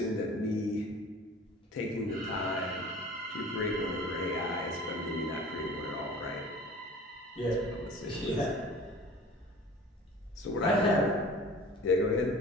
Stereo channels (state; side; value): normal; both; correlation 0.43